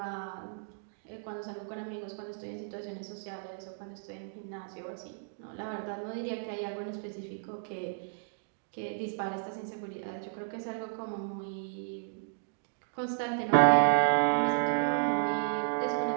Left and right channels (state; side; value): silent; left; digital silence